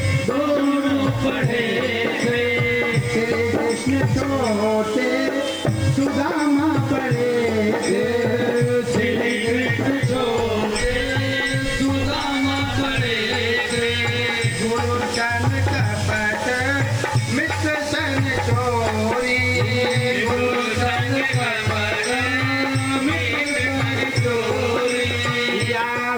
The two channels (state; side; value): noise; right; hiss, 26 dB below the sound